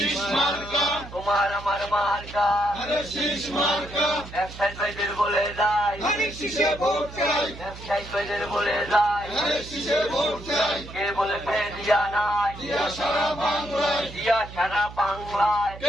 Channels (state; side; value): noise; right; hum, 14 dB below the sound